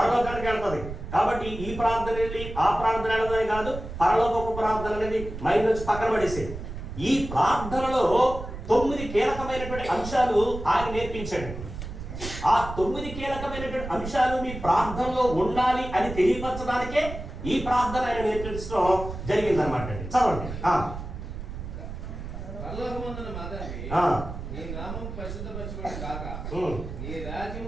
వెళ్తుంది. కాబట్టి ఈ ప్రార్థన వెళ్ళి ఆ ప్రార్థన వెళ్ళదని కాదు, పరలోకపు ప్రార్థన అనేది మైండ్ నుంచి పక్కన పడేసేది. ఈ ప్రార్థనలో 9 కీలకమైనటువంటి అంశాలు ఆయన నేర్పించాడు. ఆ 9 కీలకమైనటువంటి అంశాలు మీ ప్రార్థనలో ఉండాలి అని తెలియపరచడానికే ఈ ప్రార్థన ఆయన నేర్పించడం జరిగిందనమాట. చదవండి. నీ నామం పరిశుద్ధపరచబడి గాక, నీ రాజ్యం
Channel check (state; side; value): noise; right; rumble, 9 dB below the sound